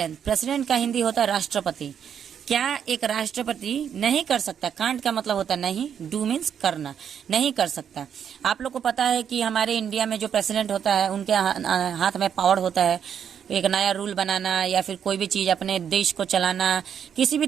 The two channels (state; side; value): quieter; left; 8.3 dB